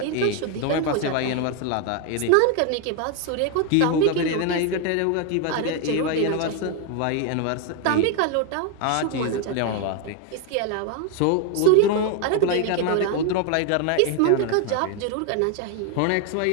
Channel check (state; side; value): different; both; correlation 0.01